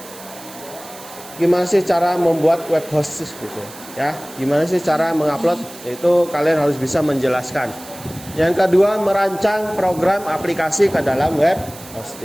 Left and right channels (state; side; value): noise; right; hiss, 17 dB below the sound